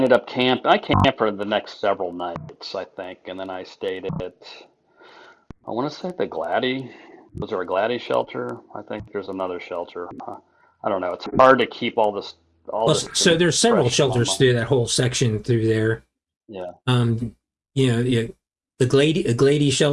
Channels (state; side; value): identical; both; correlation 1.00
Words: up I camped for the next several nights, I think, and then I stayed at I want to say the Glady. Was there a Glady shelter? I think there's another shelter. I don't know. It's hard to keep all Well, this so there's several fresh in my shelters mind. through that whole section through there. Yeah, Um, yeah, the Glady